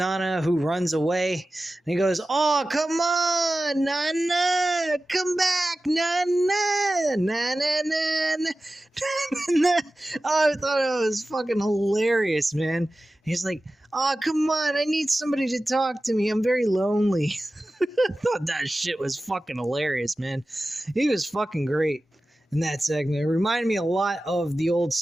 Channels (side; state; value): both; normal; correlation 0.95